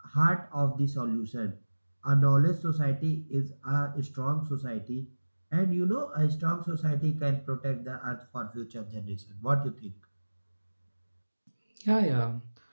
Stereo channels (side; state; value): both; inverted; correlation -1.00